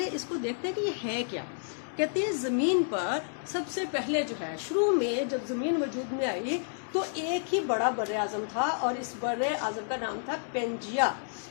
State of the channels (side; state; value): right; silent; digital silence